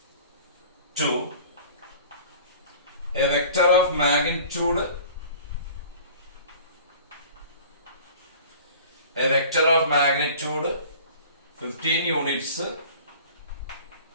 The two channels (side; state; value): both; inverted; correlation -0.44